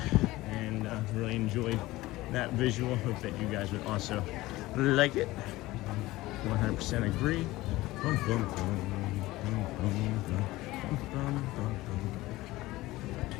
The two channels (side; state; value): right; quieter; 18.4 dB